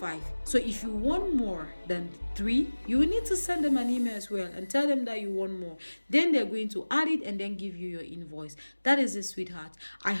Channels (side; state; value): both; inverted; correlation -1.00